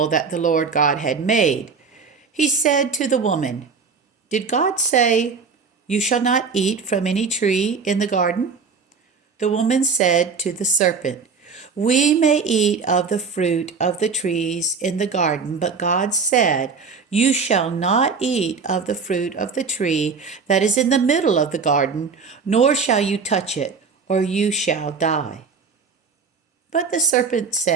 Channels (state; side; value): quieter; left; 5.3 dB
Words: that the Lord God had made. He said to the woman, "Did God say, 'You shall not eat from any tree in the garden'?" The woman said to the serpent, "We may eat of the fruit of the trees in the garden, but God said, 'You shall not eat of the fruit of the tree that is in the middle of the garden, nor shall you touch it, or you shall die.'" But the serpent